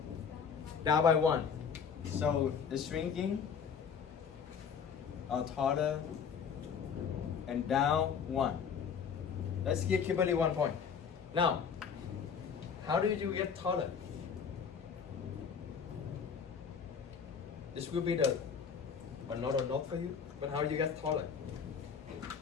down by 1. So the shrinking taller and down 1. Let's give Kimberly 1 point. Now, how do you get taller? This will be the another note for you, but how do you get taller?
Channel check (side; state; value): right; quieter; 6.7 dB